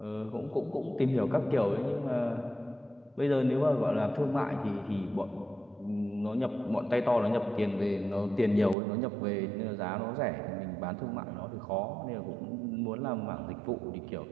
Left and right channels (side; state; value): left; drops out; at 8.8 s